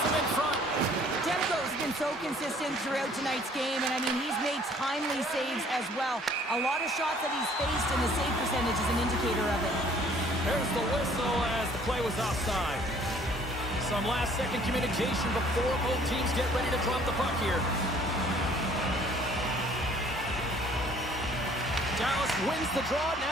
him in front. Demko's been so consistent throughout tonight's game, and I mean, he's made timely saves as well. A lot of shots that he's faced, and the save percentage is an indicator of it. There's the whistle as the play was offside. Some last-second communication before both teams get ready to drop the puck here. Dallas wins the draw.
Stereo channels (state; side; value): normal; both; correlation 0.57